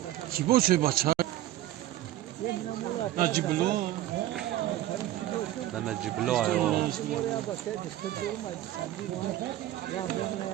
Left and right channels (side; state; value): left; quieter; 14.1 dB